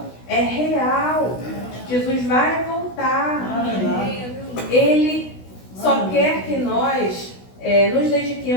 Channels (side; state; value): right; late; 16 ms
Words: é real. Jesus vai voltar. Ele só quer que nós nos